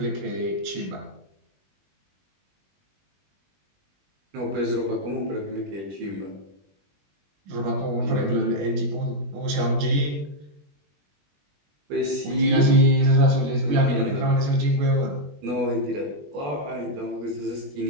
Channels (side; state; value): left; late; 20 ms